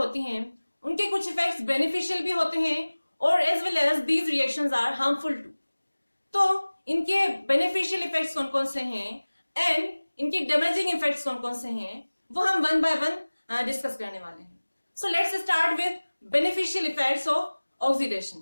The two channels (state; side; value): inverted; both; correlation -1.00